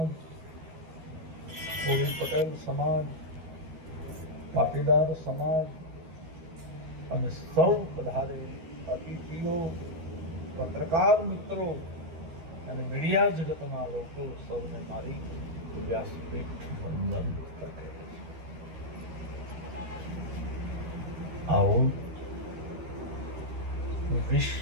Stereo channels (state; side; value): late; left; 13 ms